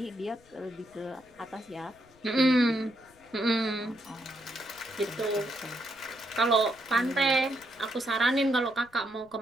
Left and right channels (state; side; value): noise; left; rumble, 29 dB below the sound